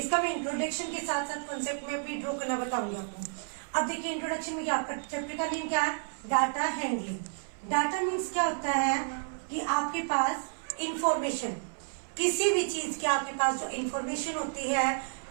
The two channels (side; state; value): left; silent; 57 dB below the other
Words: मैं इंट्रोडक्शन के साथ साथ कॉन्सेप्ट मैप भी ड्रॉ करना बताऊंगी आपको। अब देखिए इंट्रोडक्शन में क्या, आपका चैप्टर का नेम क्या है? Data handling. डाटा मीन्स क्या होता है कि आपके पास इंफॉर्मेशन, किसी भी चीज की आपके पास जो इंफॉर्मेशन होती है,